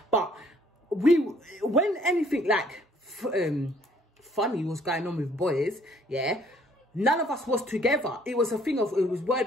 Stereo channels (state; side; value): normal; both; correlation 0.61